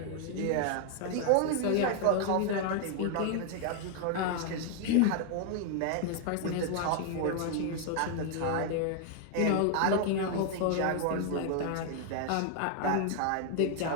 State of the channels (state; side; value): different; both; correlation 0.00